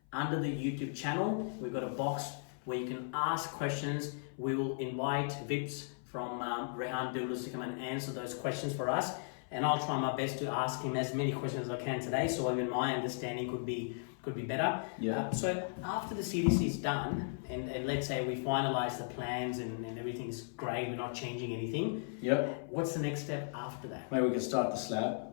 under the YouTube channel. We've got a box where you can ask questions. We will invite Vips from Rehaan Builders to come and answer those questions for us. And I'll try my best to ask him as many questions as I can today, so even my understanding could be better. So after the CDC is done, and let's say we finalize the plans and everything's great, we're not changing anything. What's the next step after that? Maybe we can start the slab.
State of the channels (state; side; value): silent; right; 54 dB below the other